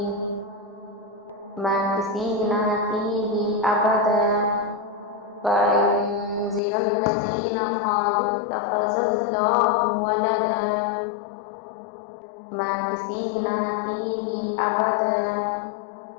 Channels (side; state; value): right; drops out; at 6.6 s